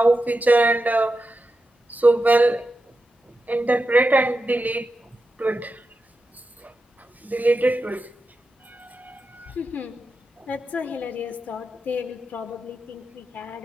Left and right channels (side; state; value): both; normal; correlation 0.90